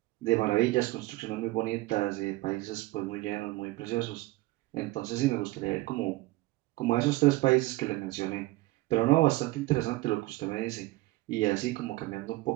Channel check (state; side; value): quieter; left; 19.6 dB